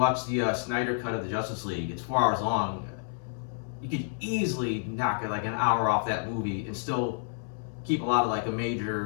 the Snyder cut of the Justice League, it's 4 hours long. You could easily knock it an hour off that movie and still keep a lot of the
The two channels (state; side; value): silent; right; 58 dB below the other